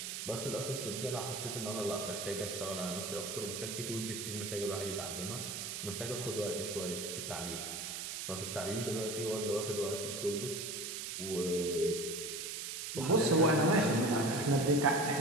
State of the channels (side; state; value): right; noise; hiss, 5 dB below the sound